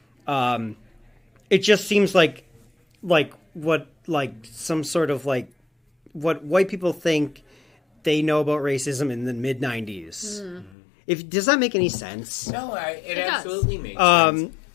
It just seems like some sort of like what white people think they know about racism in the mid 90s. Does that make any sense? No, it does. absolutely makes sense.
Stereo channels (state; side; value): drops out; right; at 10.7 s